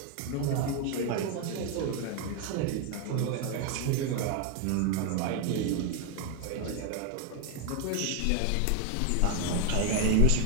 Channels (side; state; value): both; different; correlation 0.01